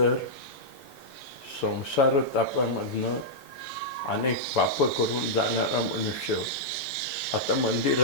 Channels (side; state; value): both; normal; correlation -0.09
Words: संसार तापामधनं अनेक पापं करून जाणारा मनुष्य आता